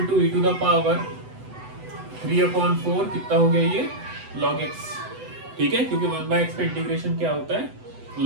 to e to the power 3/4 कितना हो गया ये log x, ठीक है, क्योंकि 1/x का इंटीग्रेशन क्या होता है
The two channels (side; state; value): left; late; 8.0 ms